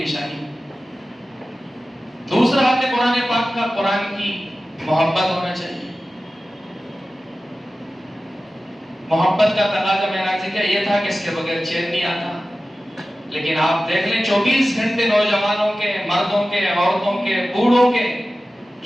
دوسرا حق قرآن پاک کا قرآن کی محبت ہونا چاہیے. محبت کا تقاضا میں نے کیا یہ تھا کہ اس کے بغیر چین نہیں آتا. لیکن آپ دیکھ لیں 24 گھنٹے نوجوانوں کے، مردوں کے، عورتوں کے، بوڑھوں کے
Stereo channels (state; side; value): normal; both; correlation 0.95